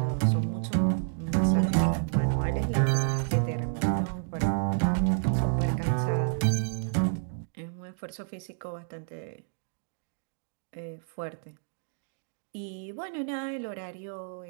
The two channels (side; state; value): left; silent; digital silence